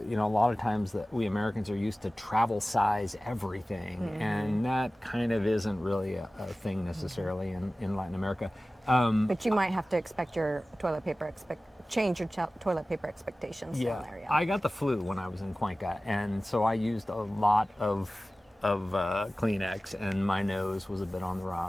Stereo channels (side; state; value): both; normal; correlation 0.97